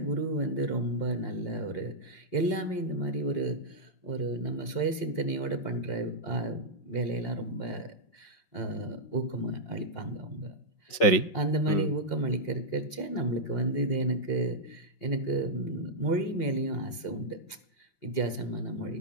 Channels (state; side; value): late; right; 5.6 ms